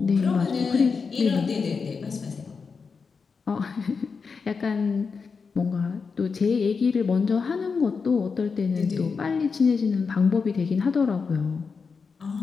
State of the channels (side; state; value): right; quieter; 5.2 dB